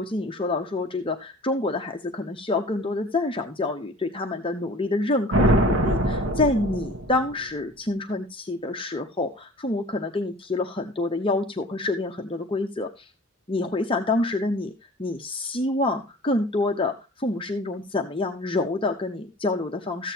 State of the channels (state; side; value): normal; both; correlation 0.44